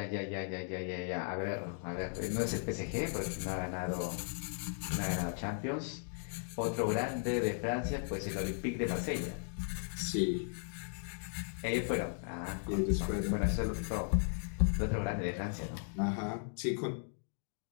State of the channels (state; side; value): silent; right; 53 dB below the other